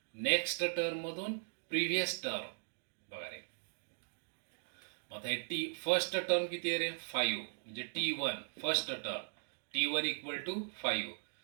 नेक्स्ट टर्म मधून प्रिव्हियस टर्म. बघा रे, आता हे टी फर्स्ट टर्म किती आहे रे? 5. म्हणजे T1 first term T1 equal to 5.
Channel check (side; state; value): left; silent; digital silence